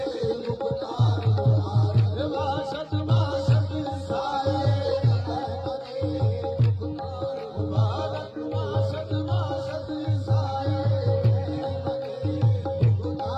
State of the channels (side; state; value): both; identical; correlation 1.00